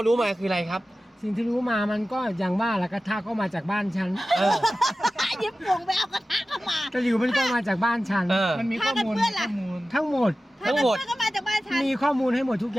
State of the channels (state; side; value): normal; both; correlation 0.95